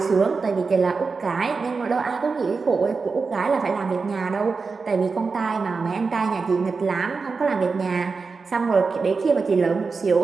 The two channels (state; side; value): quieter; left; 4.6 dB